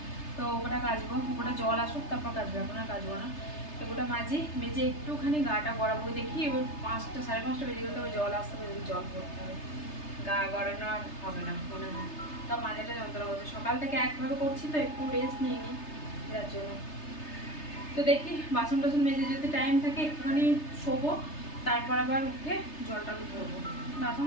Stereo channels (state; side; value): late; right; 3.3 ms